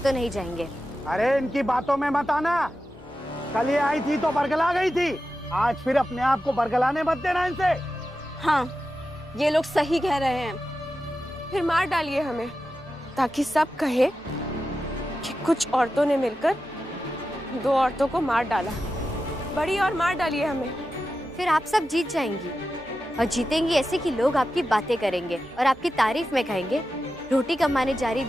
नहीं जाएंगे। अरे इनकी बातों में मत आना, कल ये आई थी तो बरगला गई थी, आज फिर अपने आप को बरगलाने मत देना इनसे। हाँ, ये लोग सही कह रहे हैं। फिर मार डालिए हमें, ताकि सब कहे कि कुछ औरतों ने मिलकर दो औरतों को मार डाला। बड़ी और मार डालिए हमें। फिर आप सब जीत जाएंगी, और जीतेंगी ऐसे कि लोग आपकी बातें करेंगे और आपकी तारीफ में कहेंगे, रोटी कमाने जा रही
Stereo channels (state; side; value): normal; both; correlation 0.91